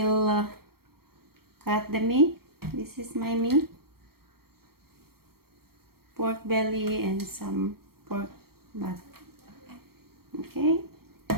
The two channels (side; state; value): left; late; 0.94 ms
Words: cut the meat. This is my meat. Pork belly and some pork butt. Okay.